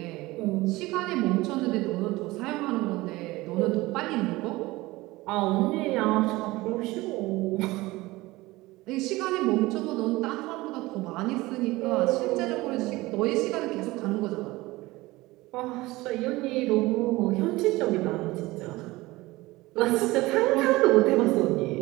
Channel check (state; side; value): quieter; left; 20.0 dB